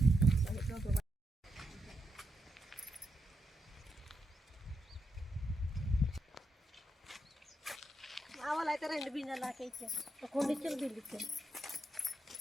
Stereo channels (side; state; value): both; normal; correlation 0.83